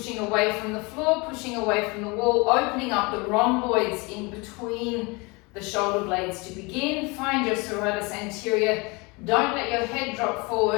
away from the floor, pushing away from the wall, opening up the rhomboids in between the shoulder blades to begin. Find your serratus anterior. Don't let your head drop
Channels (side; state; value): right; quieter; 27.0 dB